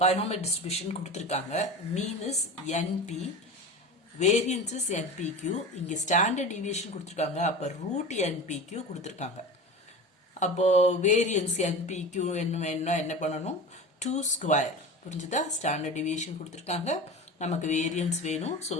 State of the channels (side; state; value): both; normal; correlation 0.31